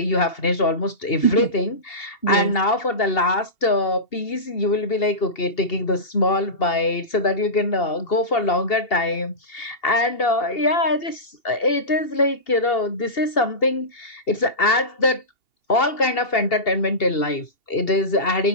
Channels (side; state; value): right; late; 2.8 ms